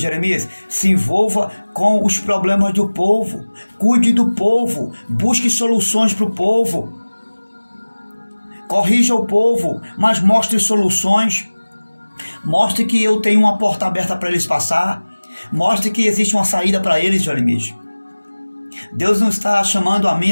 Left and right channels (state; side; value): inverted; both; correlation -1.00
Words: se envolva com os problemas do povo. Cuide do povo. Busque soluções para o povo. Corrija o povo, mas mostre soluções. Mostre que eu tenho uma porta aberta para eles passar. Mostre que existe uma saída para eles, Jeremias. Deus não está chamando a mim e